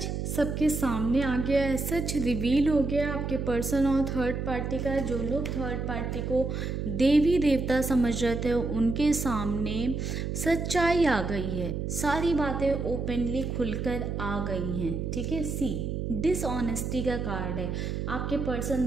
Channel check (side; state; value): right; noise; hum, 3 dB below the sound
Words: सबके सामने आ गया है, सच रिवील हो गया आपके पर्सन और थर्ड पार्टी का। जो लोग थर्ड पार्टी को देवी देवता समझ रहे थे उनके सामने सच्चाई आ गई है, सारी बातें ओपनली खुलकर आ गई हैं। ठीक है, डिसऑनेस्टी का कार्ड है। आपके पर्सन